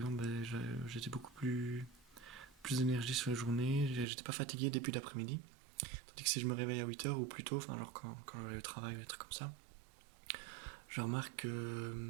j'étais beaucoup plus d'énergie sur la journée, j'étais pas fatigué début d'après-midi. Tandis que si je me réveille à 8 heures ou plus tôt, enfin, genre quand je vais au travail ou des trucs comme ça, je remarque que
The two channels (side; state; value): left; drops out; at 4.0 s